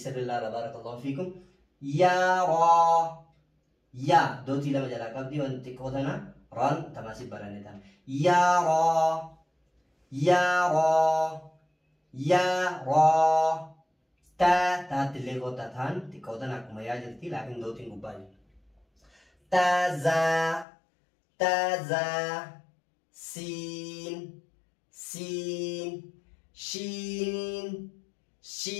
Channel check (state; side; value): drops out; right; at 20.7 s